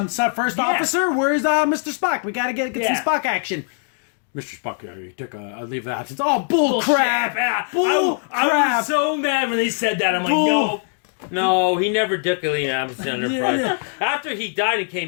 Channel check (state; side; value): silent; right; 65 dB below the other